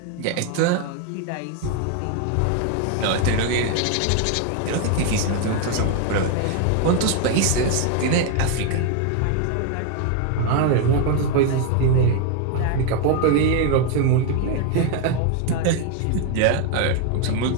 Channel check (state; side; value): different; both; correlation 0.01